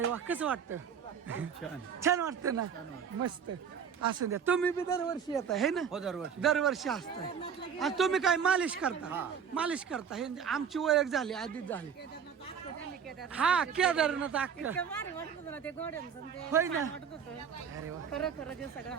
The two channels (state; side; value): quieter; left; 7.3 dB